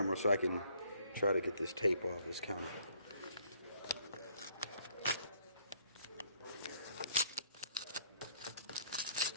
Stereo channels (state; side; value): inverted; both; correlation -0.64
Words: so I can try to get this tape off this counter.